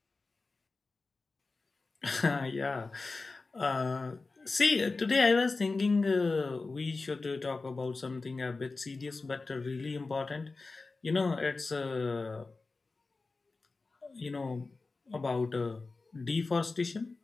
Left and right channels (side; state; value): right; quieter; 3.8 dB